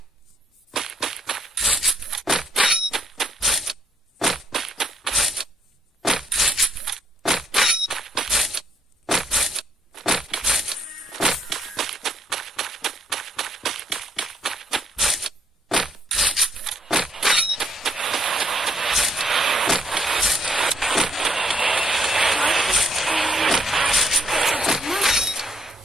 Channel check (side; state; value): both; normal; correlation 0.69